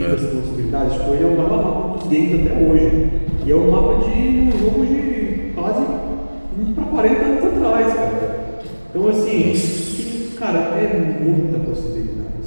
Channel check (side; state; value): both; inverted; correlation -1.00